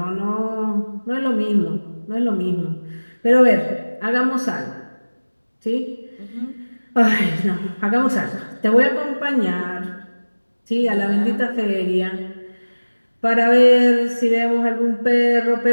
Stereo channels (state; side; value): inverted; both; correlation -1.00